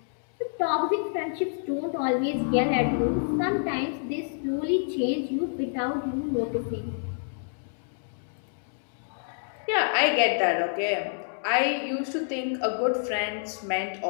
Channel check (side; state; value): right; silent; digital silence